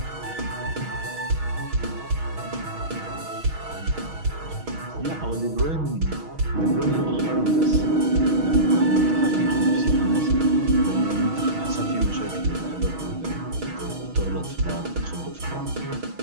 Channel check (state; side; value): late; left; 6.3 ms